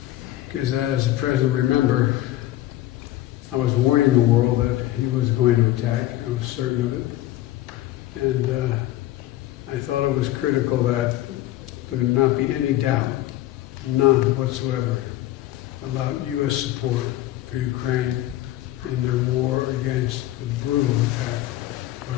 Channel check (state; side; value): quieter; right; 15.0 dB